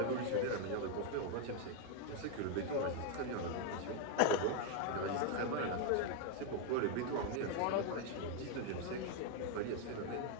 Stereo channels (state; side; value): different; both; correlation 0.01